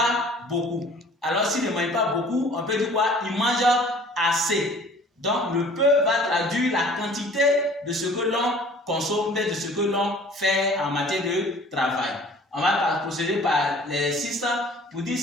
beaucoup. Alors s'il ne mange pas beaucoup, on peut dire quoi? Il mange assez. Donc le peu va traduire la quantité de ce que l'on consomme, de ce que l'on fait en matière de travail. On va procéder par l'exercice pour dire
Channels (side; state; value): both; normal; correlation 0.50